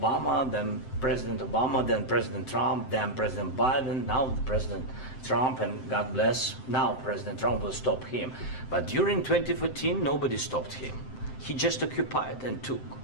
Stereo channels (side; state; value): right; late; 7.7 ms